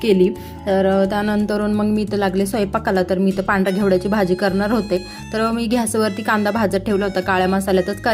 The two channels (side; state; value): both; identical; correlation 1.00